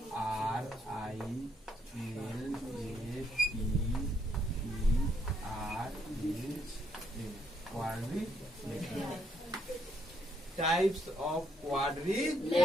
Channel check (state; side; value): normal; both; correlation 0.72